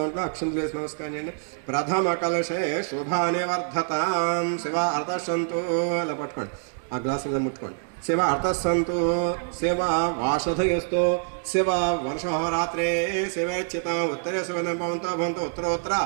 అక్షంతులు వేసి నమస్కారం చేయండి। ప్రథమ కలశే శుభాని వర్ధతాం శివ అర్థసంతు ఇలా పట్టుకోండి। ఆ గ్లాసులో ముట్టుకోండి। శివ అర్థసంతు శివ వాషధయస్తో శివ వర్షహోరాత్రే శివేచ్ఛిత ఉత్తరే శివ భవంతో భవంతో ఉత్తరోత్తర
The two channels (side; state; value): left; silent; digital silence